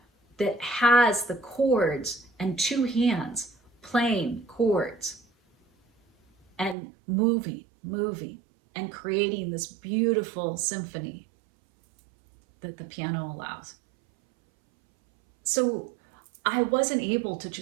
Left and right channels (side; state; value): left; drops out; at 6.8 s